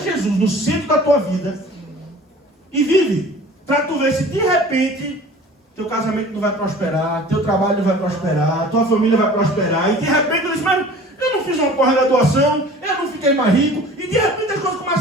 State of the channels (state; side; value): normal; both; correlation 0.44